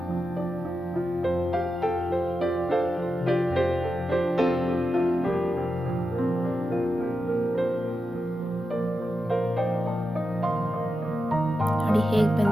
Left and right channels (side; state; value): both; normal; correlation 0.89